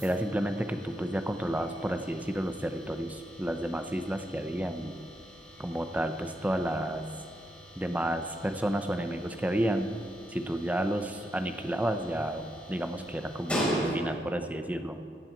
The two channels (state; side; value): normal; both; correlation 0.82